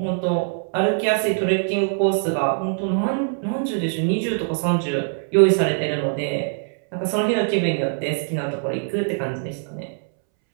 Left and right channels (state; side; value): silent; left; 64 dB below the other